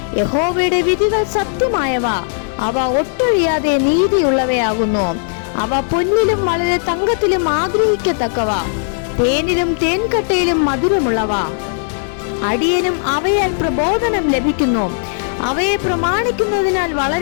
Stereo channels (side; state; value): right; silent; digital silence